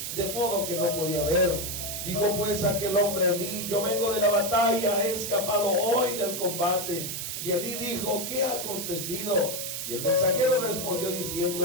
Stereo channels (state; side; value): noise; right; hiss, 4 dB below the sound